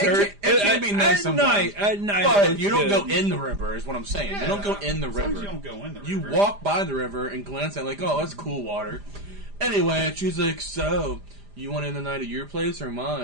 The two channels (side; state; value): left; late; 5.0 ms